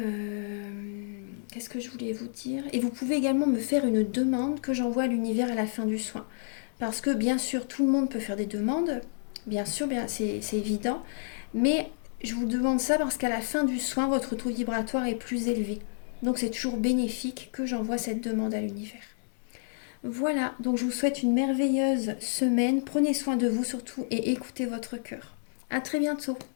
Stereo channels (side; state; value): right; silent; digital silence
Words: qu'est-ce que je voulais vous dire ? Et vous pouvez également me faire une demande que j'envoie à l'univers à la fin du soin. Parce que bien sûr, tout le monde peut faire des demandes. Bien sûr, c'est évident. Mais je vous demande ça parce qu'à la fin du soin, votre taux vibratoire est plus élevé. Donc c'est toujours bénéfique que j'envoie cette demande à l'univers. Voilà, donc je vous souhaite une merveilleuse semaine. Prenez soin de vous surtout et écoutez votre cœur. À très bientôt.